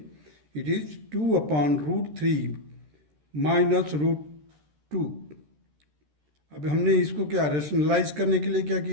It is 2 upon root 3 minus root 2. अब हमने इसको क्या रेशनलाइज करने के लिए क्या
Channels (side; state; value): left; late; 13 ms